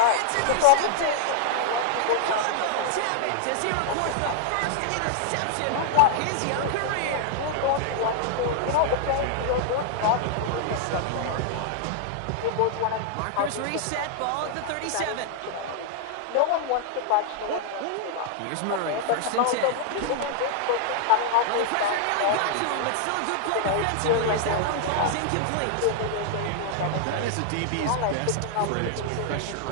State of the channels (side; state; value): both; different; correlation -0.01